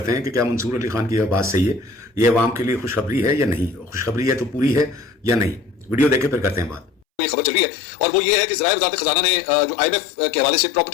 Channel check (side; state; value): right; drops out; at 7.0 s